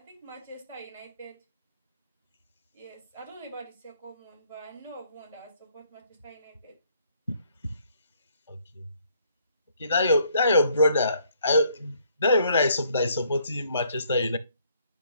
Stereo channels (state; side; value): inverted; both; correlation -0.67